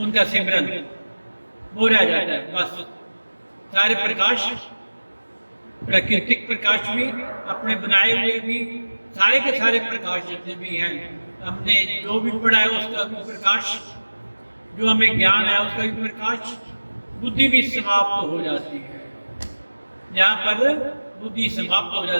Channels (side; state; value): both; inverted; correlation -1.00